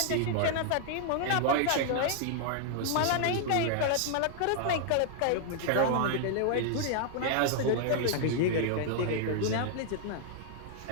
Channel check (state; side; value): different; both; correlation 0.00